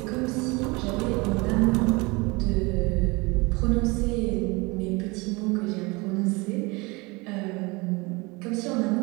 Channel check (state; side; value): quieter; left; 25.7 dB